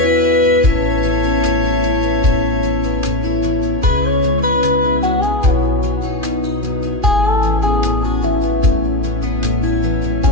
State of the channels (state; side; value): late; left; 2.4 ms